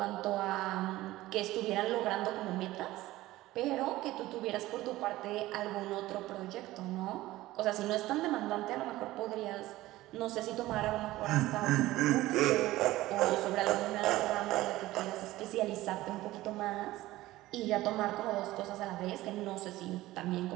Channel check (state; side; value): quieter; left; 17.0 dB